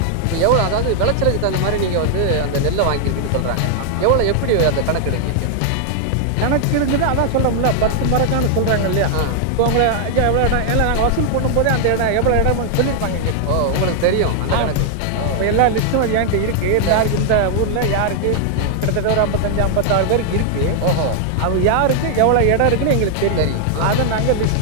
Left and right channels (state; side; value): different; both; correlation -0.01